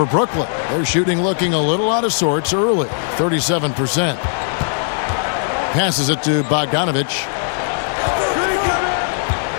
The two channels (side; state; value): right; silent; digital silence